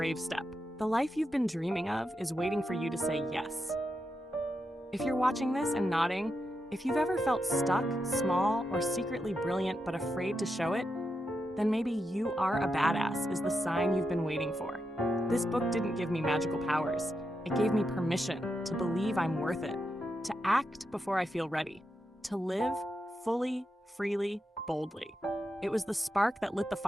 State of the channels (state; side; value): normal; both; correlation 0.86